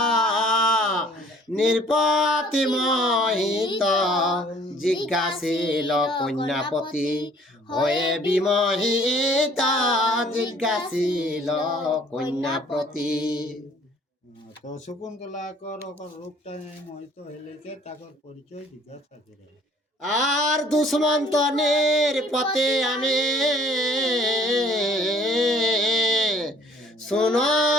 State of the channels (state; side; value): normal; both; correlation 0.57